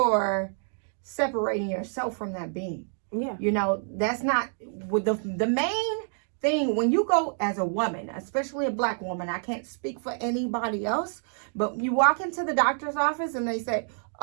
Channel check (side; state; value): left; silent; 60 dB below the other